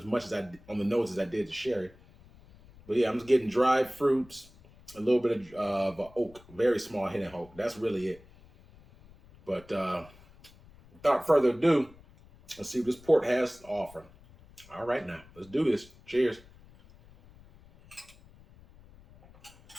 much as on the nose as I did the sherry. But yeah, I'm just getting dried fruits, a little bit of oak, very small hit of oak. That's really it. But without further ado, let's see what this port has to offer. All right, now let's do this. Cheers.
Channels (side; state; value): left; noise; rumble, 24 dB below the sound